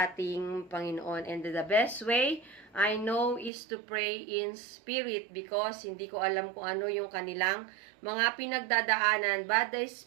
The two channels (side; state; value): left; drops out; at 3.5 s